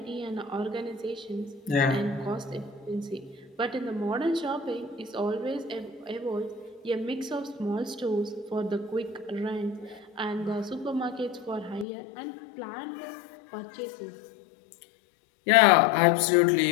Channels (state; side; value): drops out; right; at 11.9 s